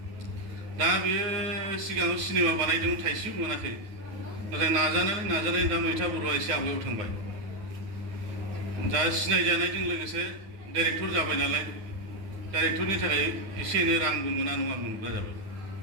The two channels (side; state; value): left; late; 9.5 ms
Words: दा बेयो सिगाङाव सिनेमा बानायदोंमोन थाइसेबो मोनाखै नाथाय नाजानानै दा मैथा बर'आ एसे आवगायाव थांबाय दा सिनायजानायजों लोगोसे डाइरेक्टर जाबाय नालाय डाइरेक्टरनि थाखाय एसे एनै रांबो मोना नङा मोनग्रा जाबाय